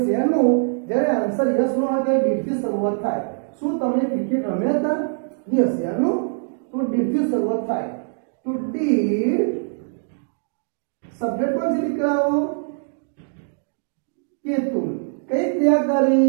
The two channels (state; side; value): silent; left; digital silence